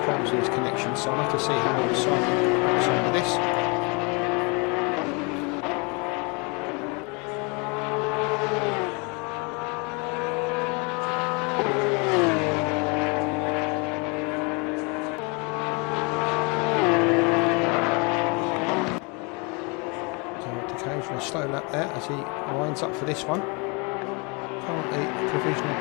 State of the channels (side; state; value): right; quieter; 31.1 dB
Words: with his connection, so I'll have to see how long Simon gets on with this. For a slow lap there as he winds up for this one. Currently provisional